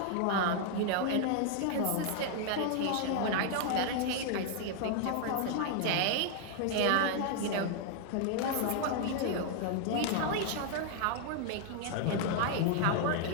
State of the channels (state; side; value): different; both; correlation 0.00